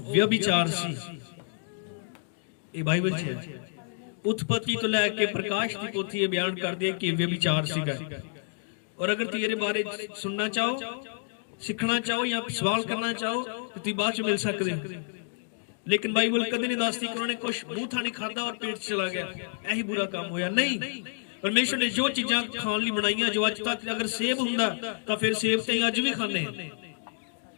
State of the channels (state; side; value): silent; right; digital silence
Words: ਵਿਅਭਿਚਾਰ ਸੀ। ਇਹ ਬਾਈਬਲ 'ਚ ਹੈ। ਉਤਪਤੀ ਤੋਂ ਲੈ ਕੇ ਪ੍ਰਕਾਸ਼ ਦੀ ਪੋਥੀ ਇਹ ਬਿਆਨ ਕਰਦੀ ਹੈ ਕਿ ਵਿਅਭਿਚਾਰ ਸੀਗਾ। ਔਰ ਅਗਰ ਤੁਸੀਂ ਇਹਦੇ ਬਾਰੇ ਸੁਣਨਾ ਚਾਹੋ, ਸਿੱਖਣਾ ਚਾਹੋ ਜਾਂ ਸਵਾਲ ਕਰਨਾ ਚਾਹੋ ਤਾਂ ਤੁਸੀਂ ਬਾਅਦ 'ਚ ਮਿਲ ਸਕਦੇ ਹੋ, ਲੇਕਿਨ ਬਾਈਬਲ ਕਦੇ ਨਹੀਂ ਦੱਸਦੀ ਕਿ ਉਹਨਾਂ ਨੇ ਕੁਝ ਮੂੰਹ ਥਾਣੀ ਖਾਧਾ ਔਰ ਪੇਟ 'ਚ ਚਲਾ ਗਿਆ, ਇਹੀ ਬੁਰਾ ਕੰਮ ਹੋਇਆ। ਨਹੀਂ, ਪਰਮੇਸ਼ਰ ਨੇ ਜੋ ਚੀਜ਼ਾਂ ਖਾਣ ਲਈ ਬਣਾਈਆਂ, ਜੋ ਅੱਜ ਤੱਕ ਅਗਰ ਸੇਬ ਹੁੰਦਾ ਤਾਂ ਫਿਰ ਸੇਬ ਤੇ ਅੱਜ ਵੀ ਖਾਂਦੇ ਆ।